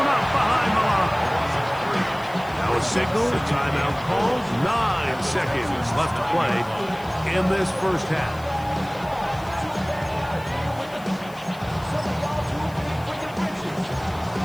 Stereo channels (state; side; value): noise; left; hiss, 23 dB below the sound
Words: up behind the line. Now a signal, a timeout called. 9 seconds left to play in this first half.